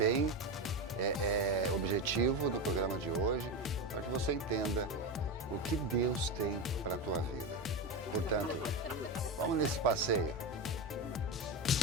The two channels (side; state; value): both; normal; correlation 0.17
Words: objetivo no programa de hoje, para que você entenda o que Deus tem para a tua vida. Portanto, vamos nesse passeio.